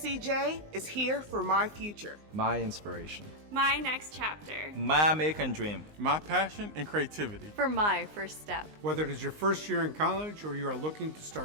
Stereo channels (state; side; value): late; left; 19 ms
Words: is here for my future. My inspiration. My next chapter. My American dream. My passion and creativity. For my first step. Whether it is your first year in college or you are looking to